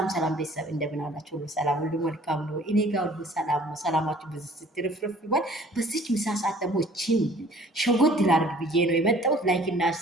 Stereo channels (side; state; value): both; normal; correlation 0.53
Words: ቤተሰብ እንደምን አላችሁ? ሁሉ ሰላም፣ ሁሉ መልካም ነው። እኔ ጋር ሁሉ ሰላም ነው። ሰላማችሁ በዚህ ስትርፍርፍ ይባል። በዚች ምሳ ሰዓት ደግሞ እቺን ሸጎት ላድርግ ብዬ ነው የመጣሁት። ላይክ እና